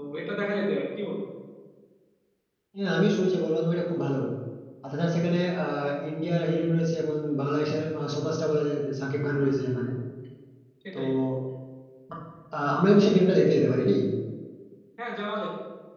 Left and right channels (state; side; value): identical; both; correlation 1.00